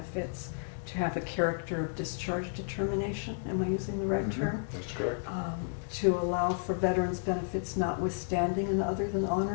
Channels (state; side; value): silent; right; digital silence